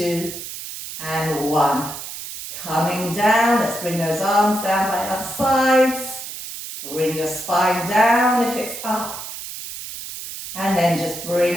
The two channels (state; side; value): noise; right; hiss, 9 dB below the sound